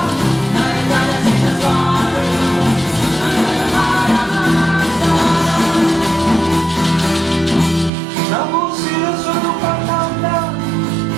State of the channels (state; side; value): drops out; left; at 7.9 s